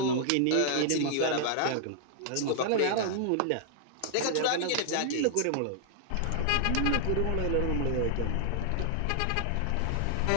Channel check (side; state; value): both; different; correlation 0.00